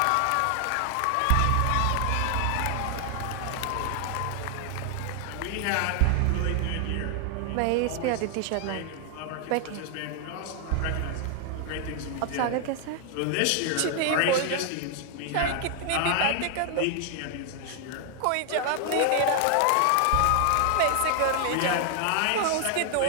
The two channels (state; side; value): different; both; correlation 0.00